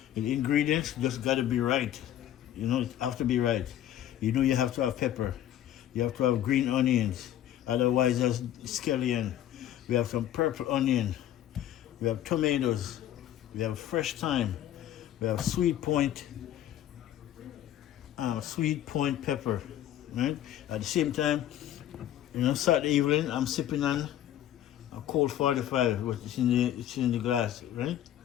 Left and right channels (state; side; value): quieter; right; 11.8 dB